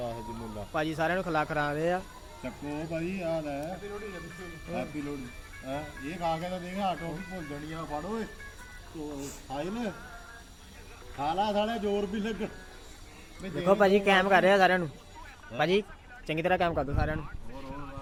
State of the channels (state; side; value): identical; both; correlation 1.00